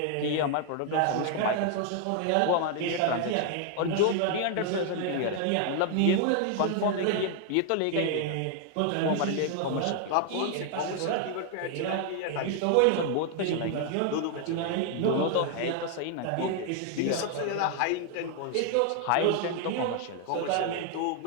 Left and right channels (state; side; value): different; both; correlation 0.00